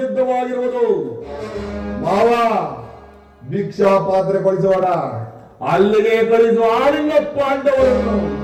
ಮಾವ, ಭಿಕ್ಷಾ ಪಾತ್ರೆ ಕಳಿಸೋಣ, ಅಲ್ಲಿಗೆ ಕಳಿಸುವ ಆಳಿನ ಪಾಂಡವರನ್ನು.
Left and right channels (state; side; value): identical; both; correlation 1.00